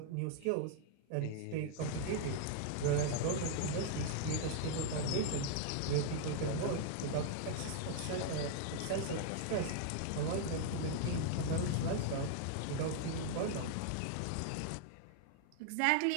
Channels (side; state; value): both; different; correlation 0.00